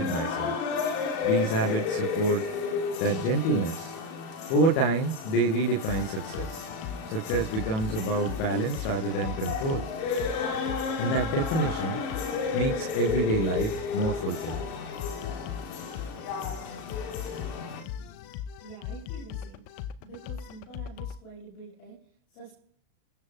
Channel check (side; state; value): right; late; 37 ms